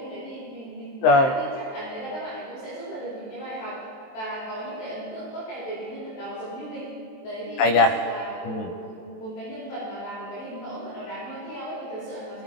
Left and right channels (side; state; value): right; late; 23 ms